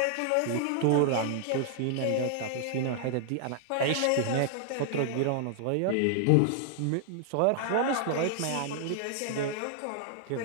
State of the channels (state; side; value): different; both; correlation 0.00